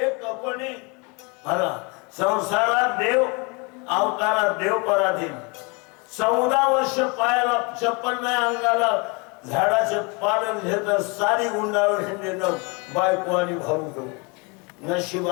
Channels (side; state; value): right; quieter; 30.3 dB